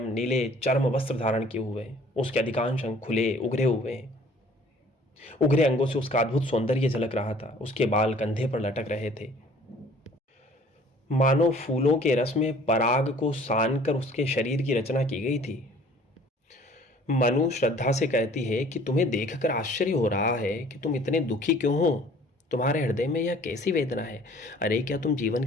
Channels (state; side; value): normal; both; correlation 0.53